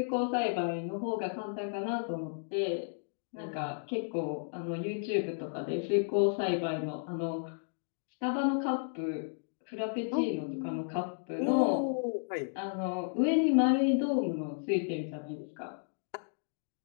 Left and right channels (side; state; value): right; silent; digital silence